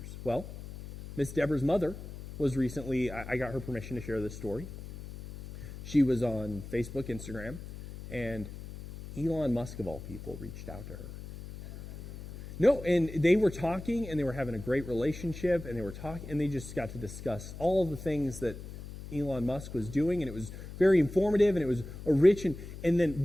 Well, Miss Deborah's mother was recently, I got her permission to share this story. She was on Facebook, Instagram, and Elon Musk, of all people, reached out to her. No, and they were talking, and they were having a great relationship, and they just got to discuss all of the things that Elon Musk was doing, and it was very informative, and it was a rich, and then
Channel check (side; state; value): left; noise; hum, 12 dB below the sound